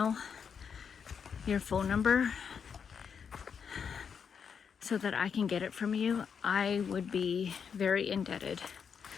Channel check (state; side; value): quieter; right; 6.8 dB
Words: your phone number so that I can get it from you, I would be very indebted.